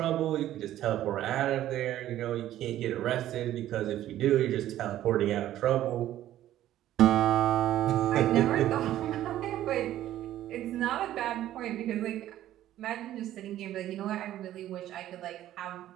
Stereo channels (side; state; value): left; quieter; 13.0 dB